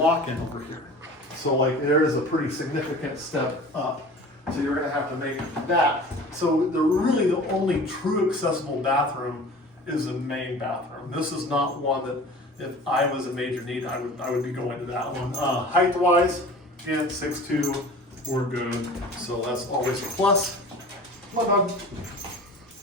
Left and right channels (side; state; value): both; normal; correlation 0.41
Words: over here. So like there is a pretty significant step up. So you're gonna have to make that. So really the only true accessible bathroom is the main bathroom. This is not one that if I was a major need, I would be going to that one. Height-wise, again, 6'2", we're good. So that's always a plus. Come on, dog.